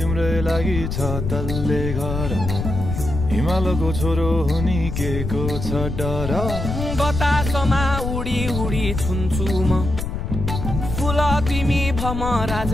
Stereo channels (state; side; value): noise; left; rumble, 4 dB below the sound